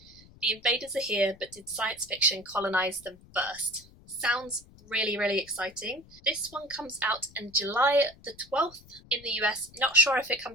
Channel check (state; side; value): noise; left; rumble, 24 dB below the sound